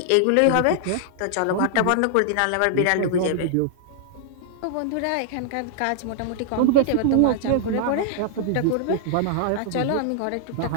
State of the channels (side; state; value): both; different; correlation -0.01